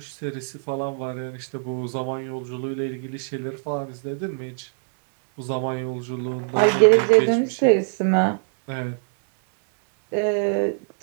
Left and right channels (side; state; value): left; silent; digital silence